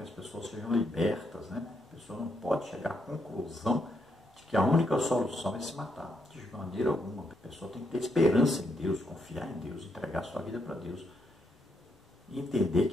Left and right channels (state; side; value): normal; both; correlation 0.78